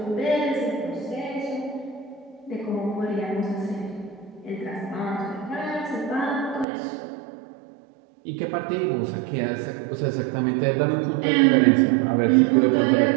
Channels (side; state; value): left; drops out; at 6.7 s